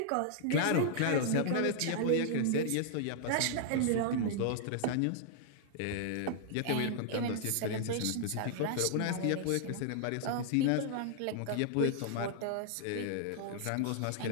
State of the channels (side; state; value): both; different; correlation -0.01